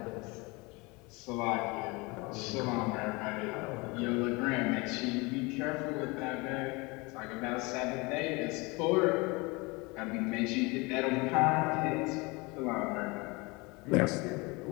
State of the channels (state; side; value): quieter; right; 26.0 dB